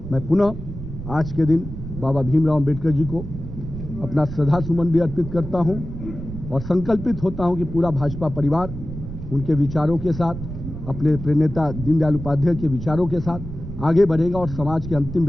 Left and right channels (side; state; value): right; noise; rumble, 9 dB below the sound